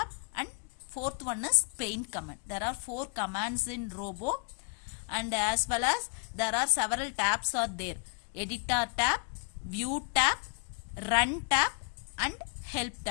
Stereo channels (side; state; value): right; quieter; 36.6 dB